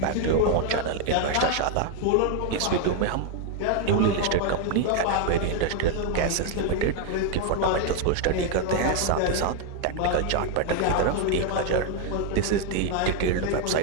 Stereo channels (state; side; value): different; both; correlation 0.01